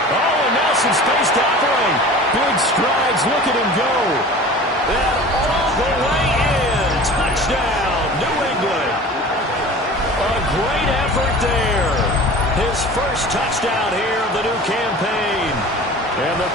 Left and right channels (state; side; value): normal; both; correlation 0.40